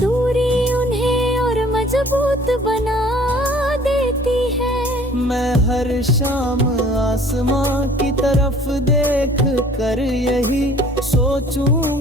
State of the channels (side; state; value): both; normal; correlation 0.52